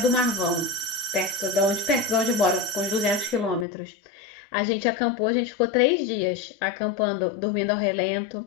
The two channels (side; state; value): right; drops out; at 3.7 s